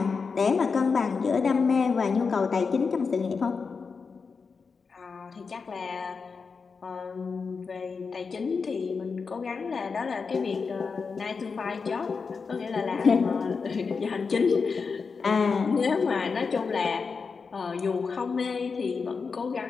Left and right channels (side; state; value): right; quieter; 5.1 dB